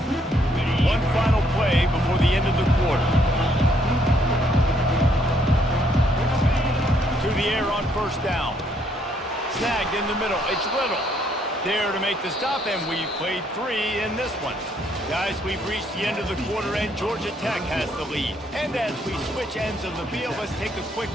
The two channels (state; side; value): normal; both; correlation 0.70